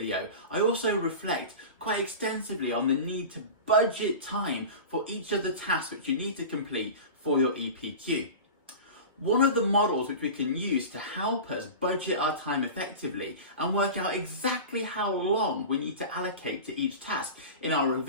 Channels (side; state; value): both; inverted; correlation -0.31